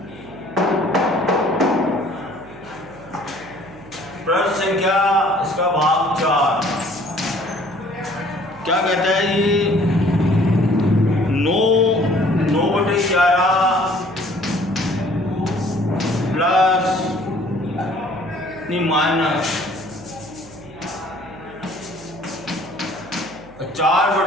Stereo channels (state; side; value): noise; right; hum, 21 dB below the sound